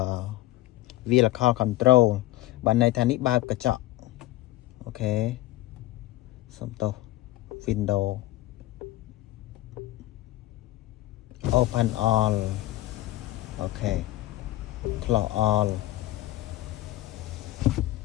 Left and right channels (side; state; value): right; quieter; 16.8 dB